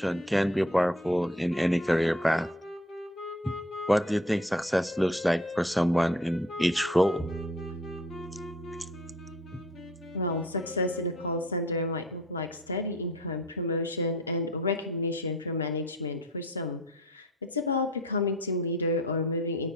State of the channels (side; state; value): both; normal; correlation 0.49